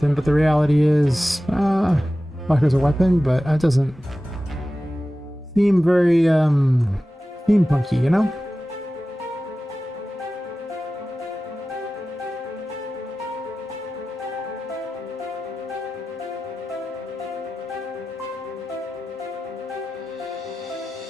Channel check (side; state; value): both; normal; correlation 0.95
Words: but the reality is, like as a weapon, but that doesn't seem very, steampunky, you know?